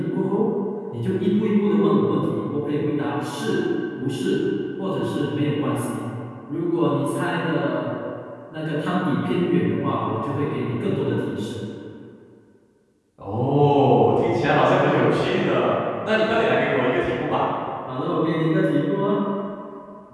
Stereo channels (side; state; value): both; identical; correlation 1.00